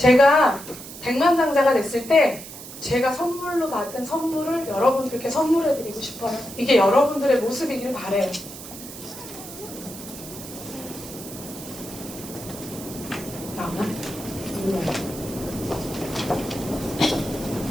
백만장자가 됐을 때 제가 선물로 받은 선물을 여러분들께 선물해드리고 싶어요. 이게 여러분들의 모습이길 바래요. 나오나?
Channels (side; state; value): right; noise; hiss, 13 dB below the sound